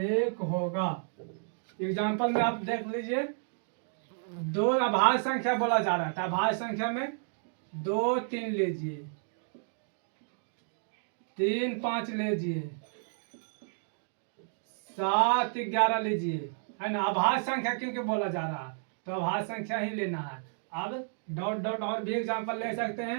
एग्जाम्पल में आप देख लीजिए, दो अभाज्य संख्या बोला जा रहा है, अभाज्य संख्या में 2 3 लीजिए, 3 5 लीजिए, 7 11 लीजिए, है ना। अभाज्य संख्या क्योंकि बोला जा रहा है तो अभाज्य संख्या ही लेना है। अब डॉट डॉट और भी एग्जाम्पल ले सकते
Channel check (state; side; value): silent; left; digital silence